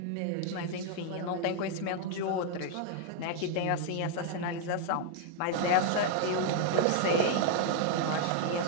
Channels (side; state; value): both; different; correlation 0.00